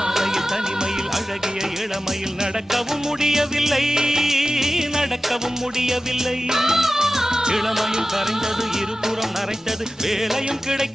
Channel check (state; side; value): normal; both; correlation 0.94